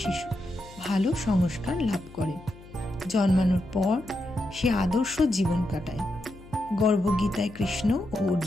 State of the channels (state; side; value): noise; left; hum, 20 dB below the sound